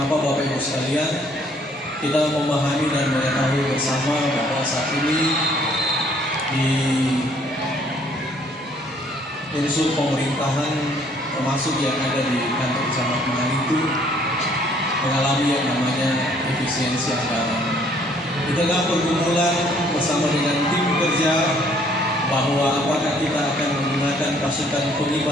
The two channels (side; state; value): both; normal; correlation 0.62